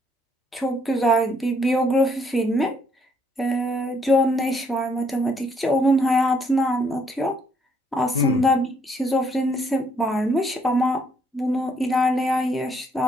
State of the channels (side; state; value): both; normal; correlation 0.69